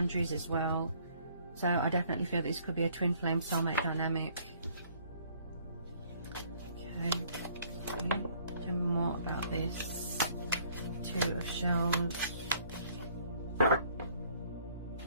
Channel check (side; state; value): both; inverted; correlation -0.60